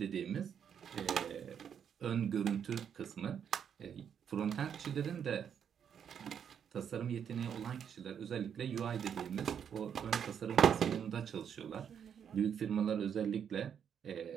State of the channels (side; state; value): left; quieter; 8.1 dB